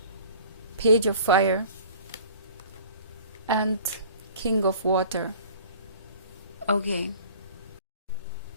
Page of Fire, and King of Water. Okay.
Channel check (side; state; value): both; inverted; correlation -0.47